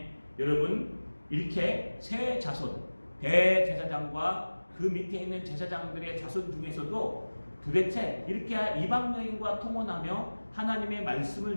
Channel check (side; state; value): both; inverted; correlation -1.00